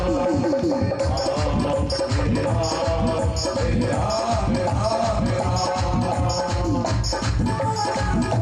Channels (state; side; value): identical; both; correlation 1.00